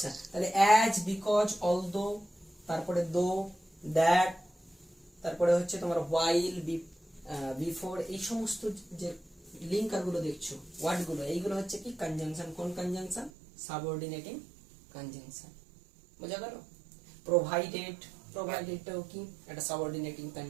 তাহলে অ্যাজ, বিকজ, অলদো, তারপরে দো, দ্যাট, তারপরে হচ্ছে তোমার while, বিফোর, এই সমস্ত যে লিঙ্কার গুলো দেখছো, ওয়ার্ড গুলো, এইগুলো হচ্ছে কি কনজাংশন। কোন কনজাংশন? সাবঅর্ডিনেটিং কনজাংশন, বোঝা গেল? প্রোভাইডেড, প্রোভাইডেডটাও কি একটা সাবঅর্ডিনেটিং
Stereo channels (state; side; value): drops out; left; at 13.3 s